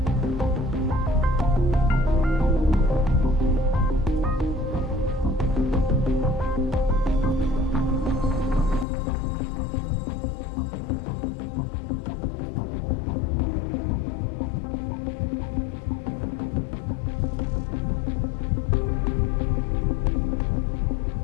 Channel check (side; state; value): right; drops out; at 8.8 s